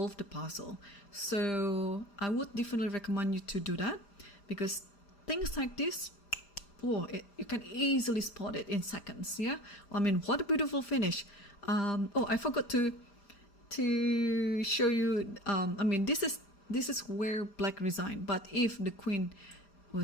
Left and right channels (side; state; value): right; late; 5.0 ms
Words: the puzzle. So I would definitely recommend you to do that, because things like this, you can easily spot it in seconds. Yeah, I mean, what a beautiful finish. Oh, I forgot to show you. I mean, this is where black resigned. But if the queen